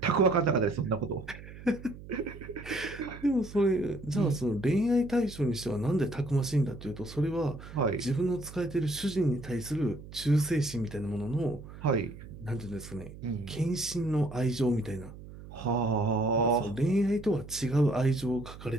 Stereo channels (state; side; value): noise; right; hum, 15 dB below the sound